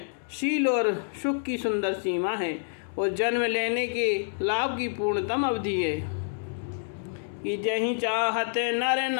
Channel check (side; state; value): right; silent; 59 dB below the other